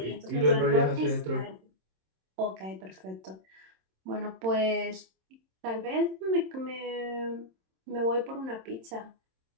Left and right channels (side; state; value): left; late; 26 ms